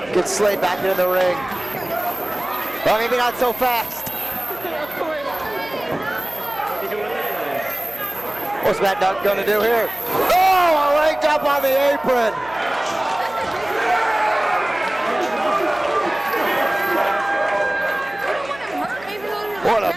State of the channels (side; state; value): right; noise; hum, 21 dB below the sound